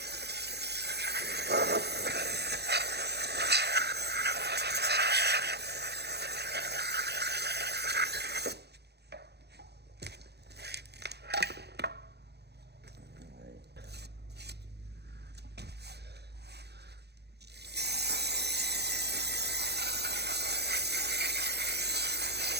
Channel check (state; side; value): late; left; 0.48 ms